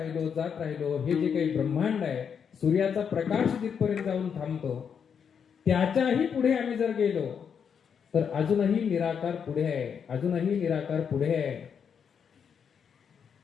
जात राहिलो. हे जे काही ब्रह्मांड आहे, सूर्याचा प्रकाश जिथपर्यंत जाऊन थांबतो, त्याच्याही पुढे आम्ही जर गेलो तर अजूनही निराकार पुढे आहे, अजूनही निराकार पुढे आहे.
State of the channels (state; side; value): quieter; right; 7.1 dB